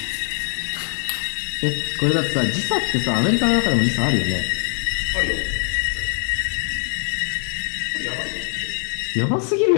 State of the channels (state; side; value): silent; right; 64 dB below the other